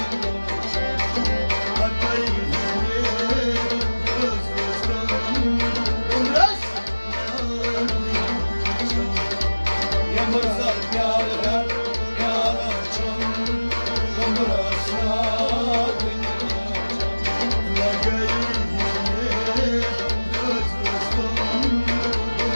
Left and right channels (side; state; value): both; inverted; correlation -1.00